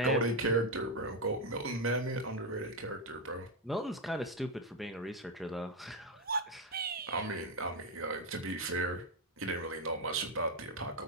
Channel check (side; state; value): both; normal; correlation 0.05